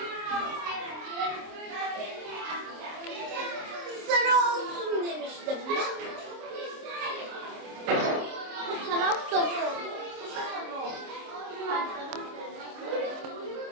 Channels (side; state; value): left; late; 26 ms